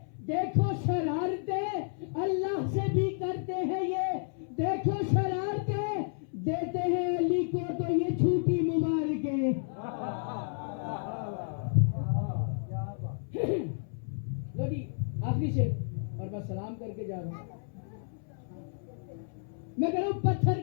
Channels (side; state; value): right; silent; 57 dB below the other